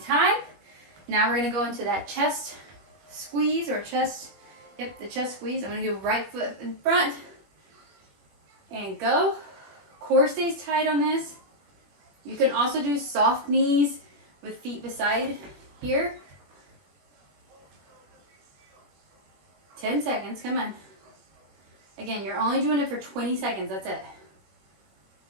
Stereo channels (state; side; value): late; left; 21 ms